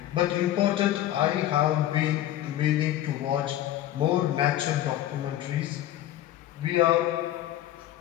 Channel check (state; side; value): quieter; right; 13.0 dB